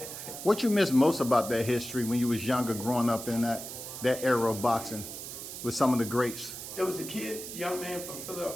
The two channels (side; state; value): right; noise; hiss, 9 dB below the sound